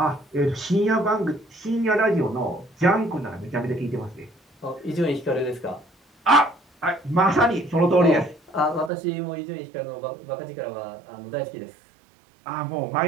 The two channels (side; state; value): left; drops out; at 8.9 s